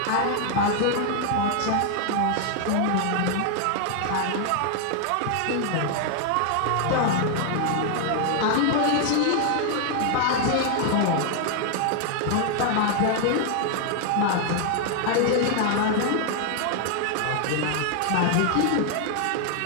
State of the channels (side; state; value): both; different; correlation 0.00